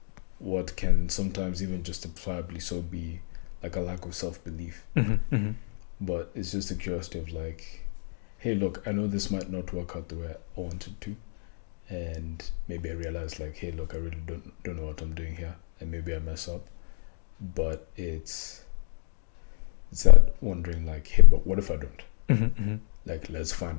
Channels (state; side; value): silent; right; digital silence